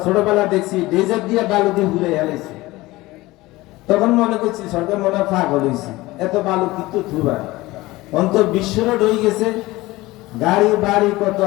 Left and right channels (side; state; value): right; quieter; 19.5 dB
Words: ছোটবেলা দেখছি ডেজার্ট দিয়ে বালু দিয়ে ঘুরে এলাইছি। তখন মনে করছি সরকার মনে পাগল হয়েছে, এত বালু কিন্তু থুবার অন্তর বিশ্ব রোড হয়ে গেছে, গাড়ি বাড়ি কত